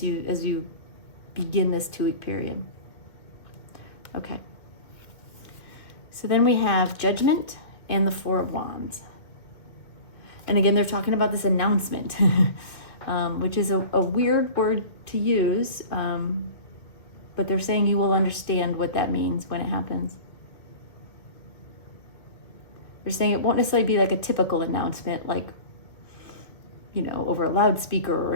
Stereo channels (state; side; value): late; right; 2.0 ms